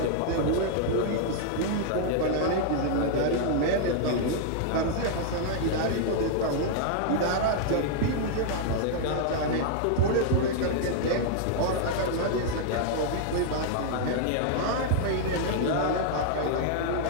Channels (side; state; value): both; different; correlation -0.01